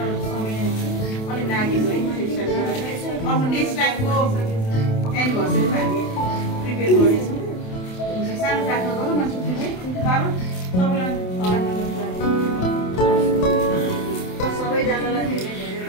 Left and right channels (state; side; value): late; right; 27 ms